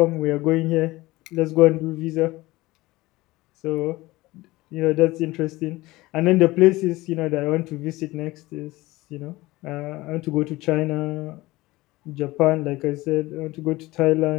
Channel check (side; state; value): right; quieter; 19.6 dB